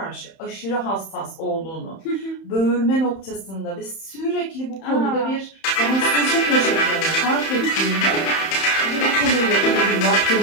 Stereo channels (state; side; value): late; right; 31 ms